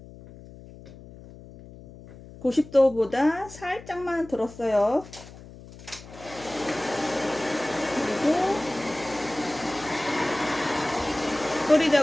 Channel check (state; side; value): noise; left; hum, 18 dB below the sound